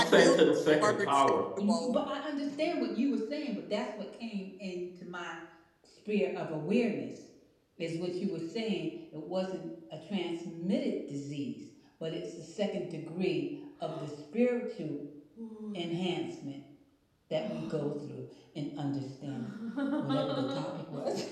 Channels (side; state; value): both; identical; correlation 1.00